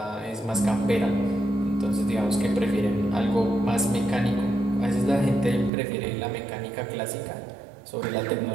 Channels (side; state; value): left; drops out; at 5.7 s